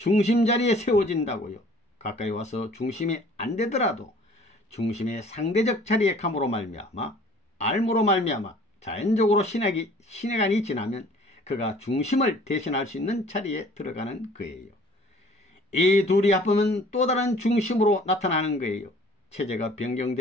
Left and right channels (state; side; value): normal; both; correlation 0.52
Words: 자리에 세워진다고요. 가까이 와서 중심이 안 되더라도 중심의 상대적 자리에 감으로 말미암아 알무로 말미암아 자연적으로 신해간이 지나면 그가 중심을 대신할 수 있는 자리에 들어가는 거예요. 이 둘이 합하면 또 다른 중심으로 나타나는 거예요. 체제가